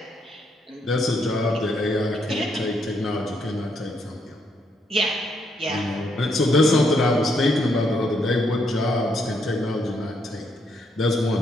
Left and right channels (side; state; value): both; normal; correlation 0.75